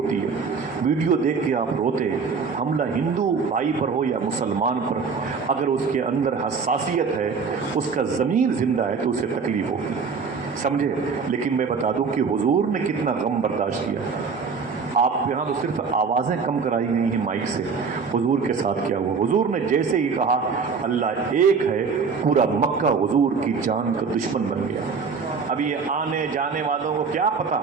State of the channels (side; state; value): left; quieter; 5.3 dB